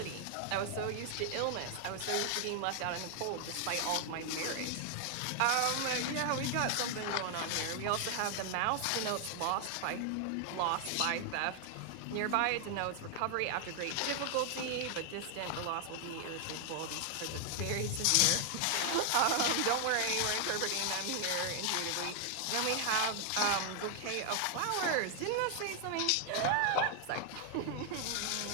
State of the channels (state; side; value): different; both; correlation 0.00